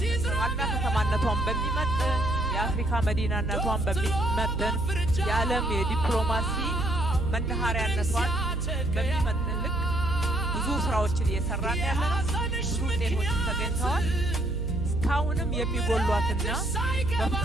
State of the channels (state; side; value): noise; right; hum, 3 dB below the sound